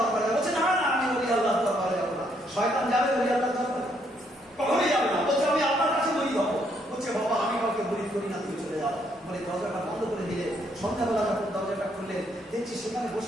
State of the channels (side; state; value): both; normal; correlation 0.72